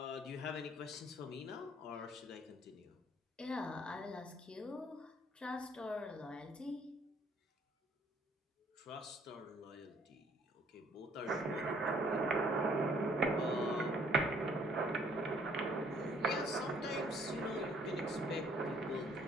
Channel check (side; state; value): both; normal; correlation 0.62